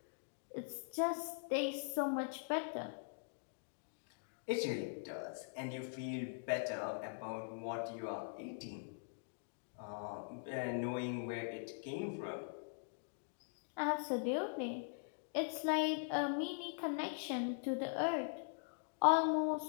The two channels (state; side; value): silent; right; digital silence